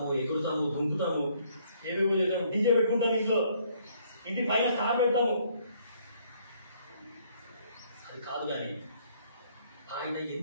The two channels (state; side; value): inverted; both; correlation -0.65